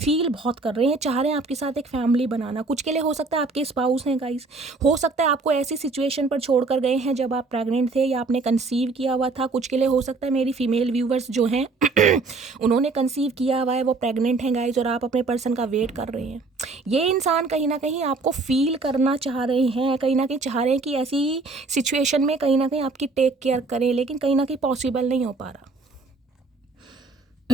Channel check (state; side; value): quieter; left; 3.7 dB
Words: बहुत कर रहे हैं, चाह रहे हैं आपके साथ एक फैमिली बनाना। कुछ के लिए हो सकता है आपके स्पाउस हैं गाइस, हो सकता है आपको ऐसी सिचुएशन पर छोड़ कर गए हैं जब आप प्रेग्नेंट थे या आपने कंसीव किया हुआ था। कुछ के लिए हो सकता है मेरी फीमेल व्यूवर्स जो हैं उन्होंने कंसीव किया हुआ है, वो प्रेग्नेंट हैं गाइस, और आप अपने पर्सन का वेट कर रहे हैं। ये इंसान कहीं ना कहीं आपको फील करना चाह रहे हैं, कहीं ना कहीं चाह रहे हैं कि ऐसी सिचुएशन में कहीं ना कहीं आपकी टेक केयर करें, लेकिन कहीं ना कहीं पॉसिबल नहीं हो पा रहा।